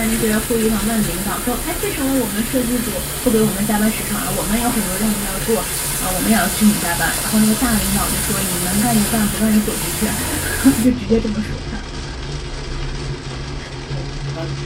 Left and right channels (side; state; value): both; identical; correlation 1.00